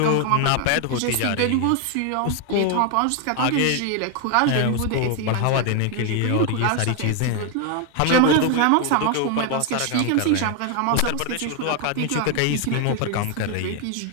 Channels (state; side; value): different; both; correlation 0.01